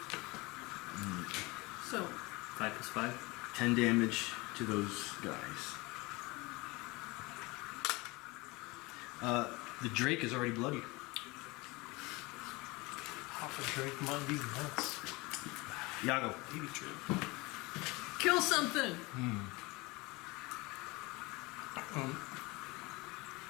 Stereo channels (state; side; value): quieter; right; 24.1 dB